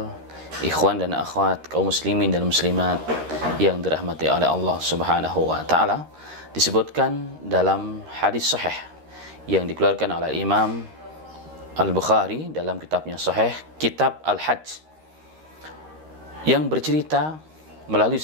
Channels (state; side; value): late; left; 13 ms